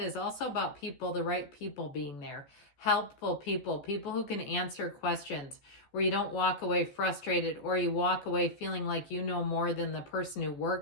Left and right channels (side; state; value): right; late; 14 ms